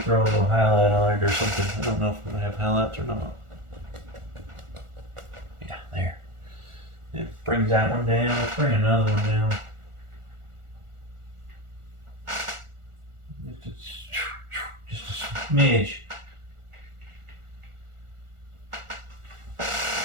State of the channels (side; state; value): left; late; 1.4 ms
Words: a little highlight on it or something. I don't know if we're going to have highlights or not. Yeah, there. It brings that one down. Let's bring another one down. Just a smidge.